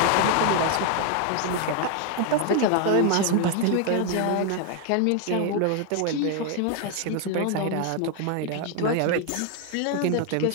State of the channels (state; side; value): different; both; correlation 0.01